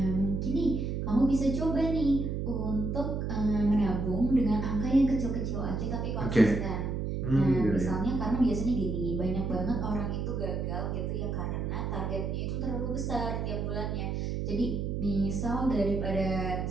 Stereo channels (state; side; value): noise; right; hum, 2 dB below the sound